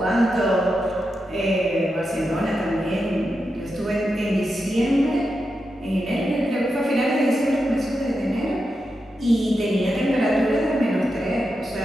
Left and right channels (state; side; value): normal; both; correlation 0.88